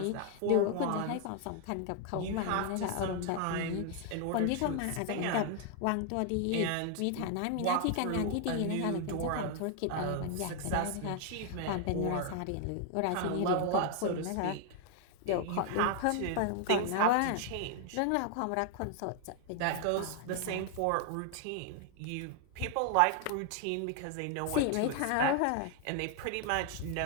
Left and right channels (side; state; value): both; different; correlation 0.00